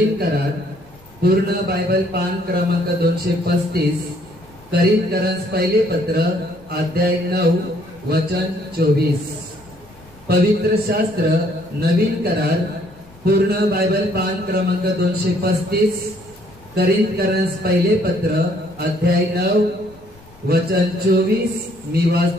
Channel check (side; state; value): left; noise; rumble, 26 dB below the sound